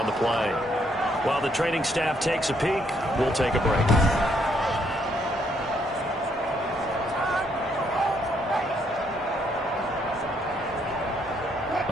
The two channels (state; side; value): normal; both; correlation 0.71